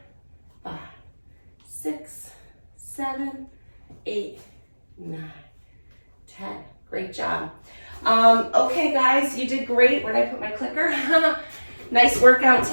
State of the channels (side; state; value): both; inverted; correlation -1.00